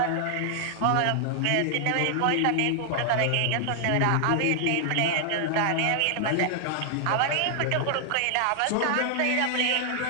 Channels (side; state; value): both; different; correlation 0.00